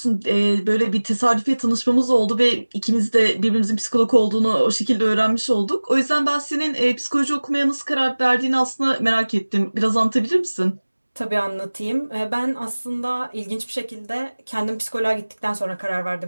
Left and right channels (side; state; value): both; inverted; correlation -1.00